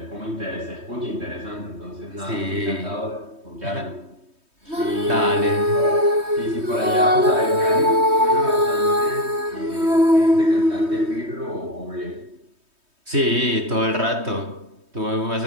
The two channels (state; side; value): late; left; 3.2 ms